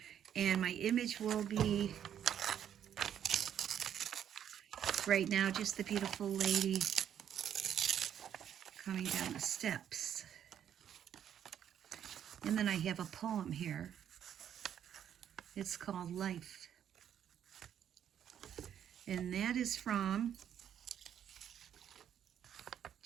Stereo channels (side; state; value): left; quieter; 9.6 dB